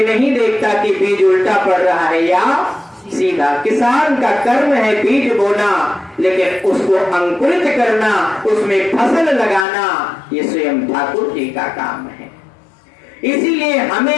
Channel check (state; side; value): drops out; right; at 9.7 s